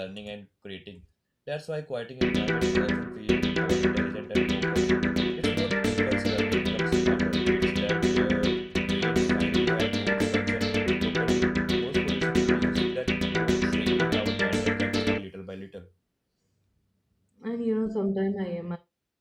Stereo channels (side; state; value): both; identical; correlation 1.00